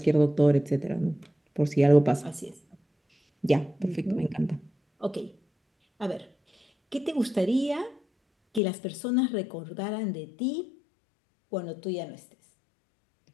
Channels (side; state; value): right; drops out; at 8.6 s